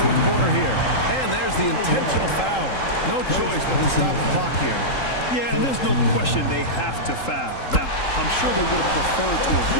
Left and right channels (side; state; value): right; late; 3.8 ms